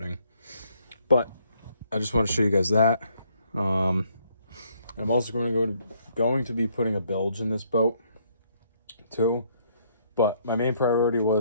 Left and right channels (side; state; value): both; inverted; correlation -0.69